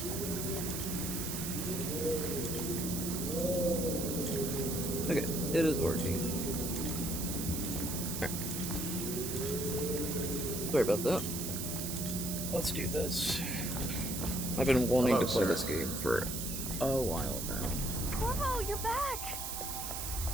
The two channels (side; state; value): right; noise; hiss, 4 dB below the sound